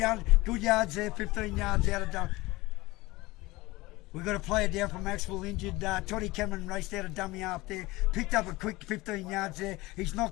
yards there. 15 yards out of dummy. We've got a player down from Maxwell injured. Toddy Cameron raced out a dummy half there. Picked up a quick 15 yards there. He's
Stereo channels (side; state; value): right; quieter; 20.8 dB